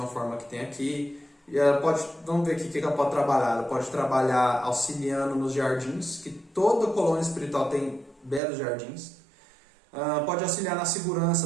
forma que tem aqui. E ela pode, vamos ver aqui o que ela pode trabalhar. Ela pode trabalhar auxiliando nos jardins, que toda colônia espiritual tem belos jardins. Pode auxiliar na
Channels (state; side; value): drops out; left; at 8.4 s